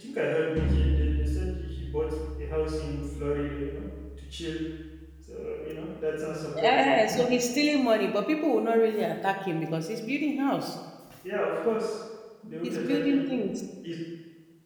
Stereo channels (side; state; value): both; identical; correlation 1.00